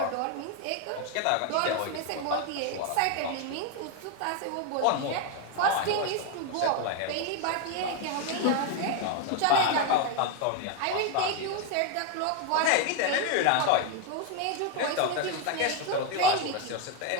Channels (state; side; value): different; both; correlation 0.01